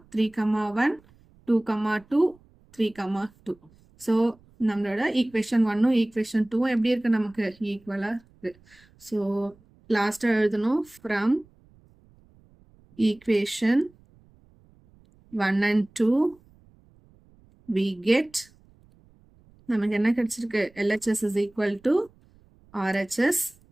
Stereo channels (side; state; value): right; noise; rumble, 30 dB below the sound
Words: 3,1 2,2 3,2. ஸோ நம்மளோட ஈக்குவேஷன் 1ம் ஈக்குவேஷன் 2ம் எப்படி இருக்குது, நமக்கு ஈக்குவலாக இருக்குது. ஸோ லாஸ்ட்டாக எழுதணும், from equation 1 and 2 we get, நமக்கு என்ன கிடைச்சிருக்கு, LHS is equal to RHS.